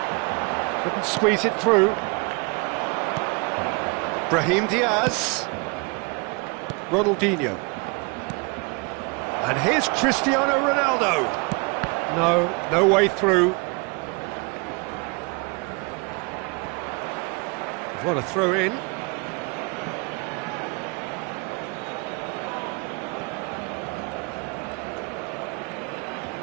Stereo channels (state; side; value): quieter; left; 30.2 dB